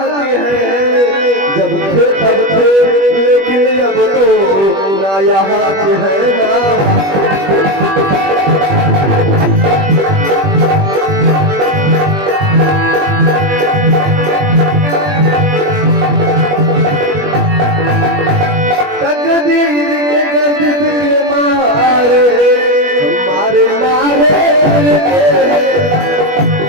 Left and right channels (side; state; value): left; late; 21 ms